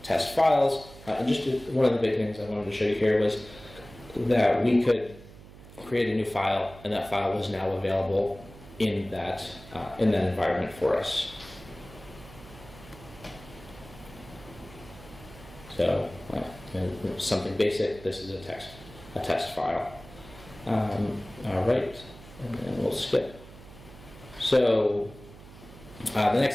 test files. And just one of the big things I wanted to show you here was that we could create a new file, and that file was now available in that environment for us. So something basic. This is a test file. All right, and then we'll skip. So the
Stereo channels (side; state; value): right; noise; hum, 19 dB below the sound